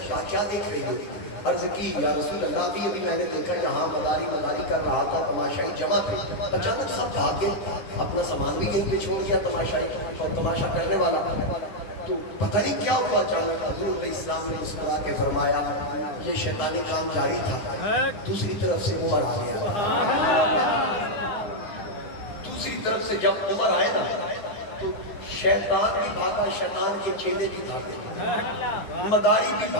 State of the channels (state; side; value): late; right; 9.8 ms